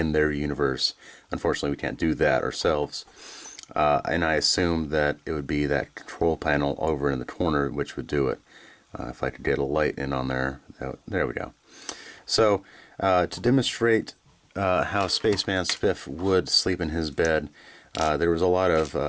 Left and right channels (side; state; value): both; identical; correlation 1.00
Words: universe. Unfortunately, we can't do that ourselves. And I assume that it would be that control panel over in the corner which would do it. If I could get a light in on there. There we go. So, to demonstrate how Spaceman Spiff would sleep in his bed, there was a lot